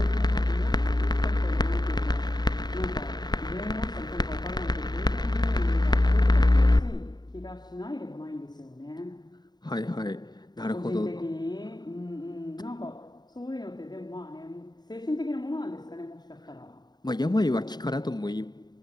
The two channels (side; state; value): right; late; 0.20 ms